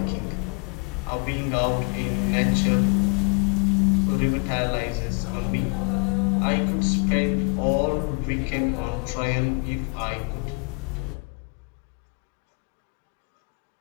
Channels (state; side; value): quieter; right; 33.3 dB